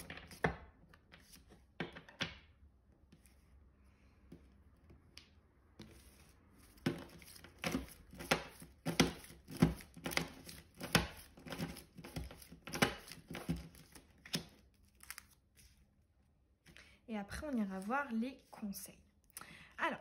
Et après, on ira voir les conseils.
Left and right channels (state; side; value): identical; both; correlation 1.00